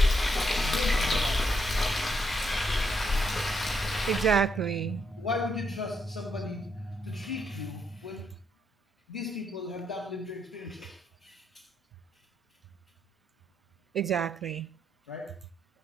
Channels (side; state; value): both; normal; correlation 0.77